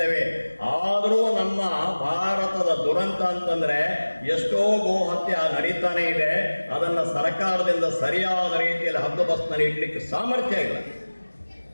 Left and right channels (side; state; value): both; inverted; correlation -1.00